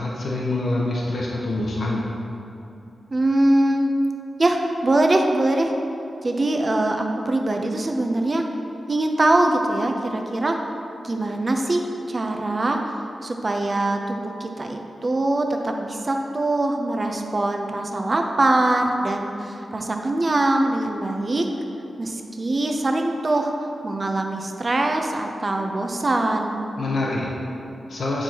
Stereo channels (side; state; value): both; normal; correlation 0.94